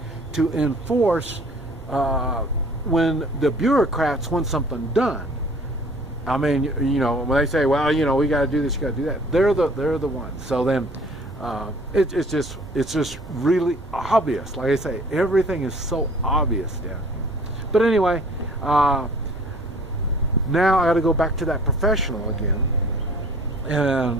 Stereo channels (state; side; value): normal; both; correlation 0.52